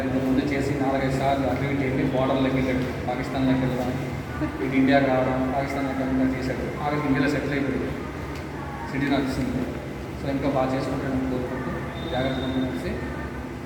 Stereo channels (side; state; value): both; identical; correlation 1.00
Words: ముందు చేసి 4-5 సార్లు అటు ఇటు వెళ్ళి బార్డర్లోకి వెళ్ళాడు. పాకిస్తాన్లోకి వెళ్ళడం, ఇటు ఇండియాకి రావడం, పాకిస్తాన్లోకి వెళ్ళడం చేశాడు. ఆవిడకి ఇండియాలో సెటిల్ అయిపోయింది, సిటీ నడుస్తుంది. సో ఇంకా బాగా చేసుకుంటాను కోరుకుంటూ జాగ్రత్తగా కలిసి